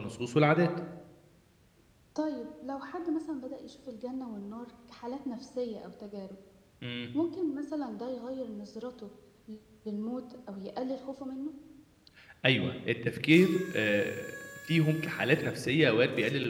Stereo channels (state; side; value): identical; both; correlation 1.00